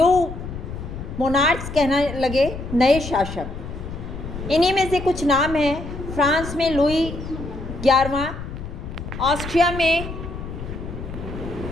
मोनार्क्स कहने लगे, नए शासक। इन्हीं में से कुछ नाम हैं। फ्रांस में लुई 11वां, ऑस्ट्रिया में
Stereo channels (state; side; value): noise; left; rumble, 9 dB below the sound